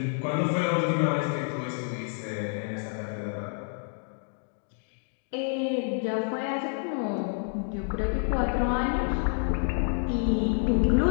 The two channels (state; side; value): silent; right; 59 dB below the other